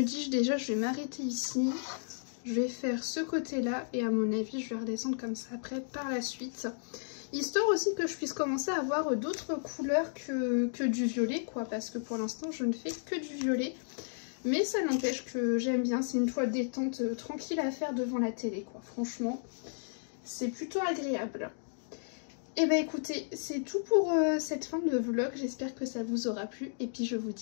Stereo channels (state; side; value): silent; right; digital silence